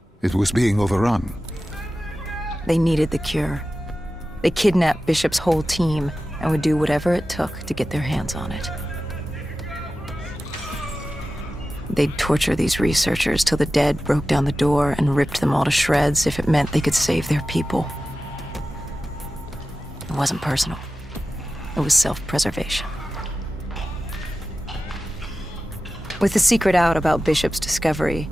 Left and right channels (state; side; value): normal; both; correlation 0.94